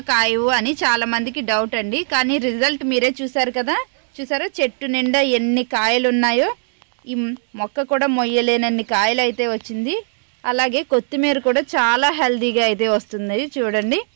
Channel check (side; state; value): left; silent; digital silence